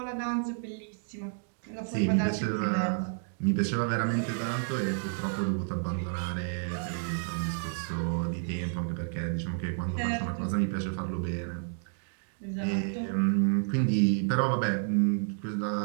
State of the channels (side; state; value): left; silent; 57 dB below the other